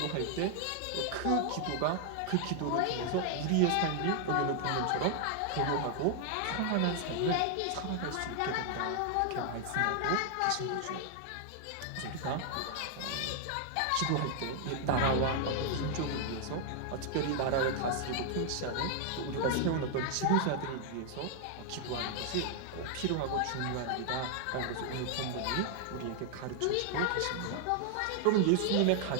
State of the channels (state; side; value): different; both; correlation 0.00